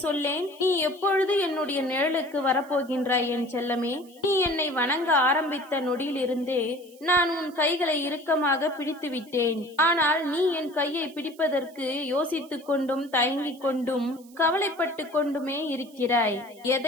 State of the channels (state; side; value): noise; right; hiss, 26 dB below the sound